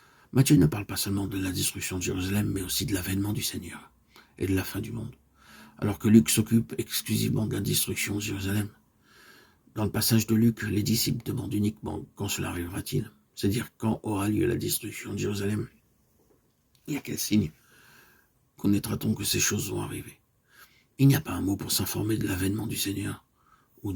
Matthieu ne parle pas seulement de la destruction de Jérusalem, mais aussi de l'avènement du Seigneur et de la fin du monde. Alors que Luc s'occupe exclusivement de la destruction de Jérusalem. Dans le passage de Luc, les disciples demandent uniquement quand cela arrivera-t-il, c'est-à-dire quand aura lieu la destruction de Jérusalem. Et à quel signe connaîtra-t-on que ces choses vont arriver? Il n'y a pas un mot pour s'informer de l'avènement du Seigneur ou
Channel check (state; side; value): identical; both; correlation 1.00